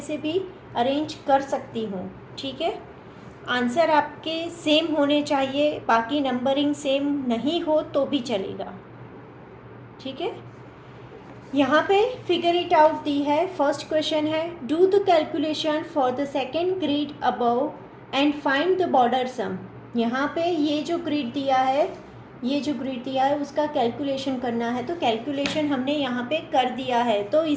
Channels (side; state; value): both; identical; correlation 1.00